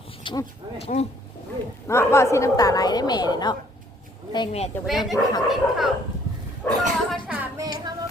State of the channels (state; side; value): normal; both; correlation 0.62